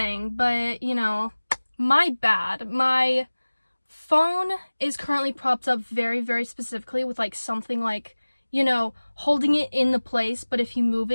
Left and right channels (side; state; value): both; inverted; correlation -1.00